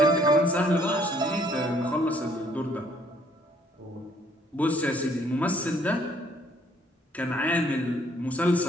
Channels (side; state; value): both; normal; correlation 0.63